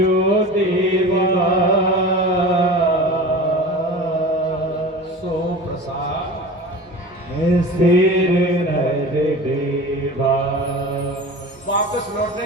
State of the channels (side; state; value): both; normal; correlation 0.35